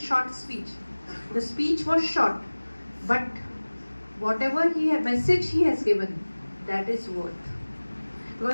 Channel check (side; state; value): both; inverted; correlation -1.00